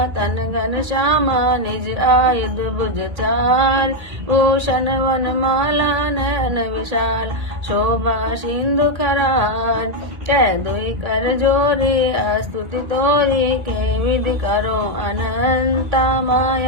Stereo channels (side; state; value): left; late; 1.8 ms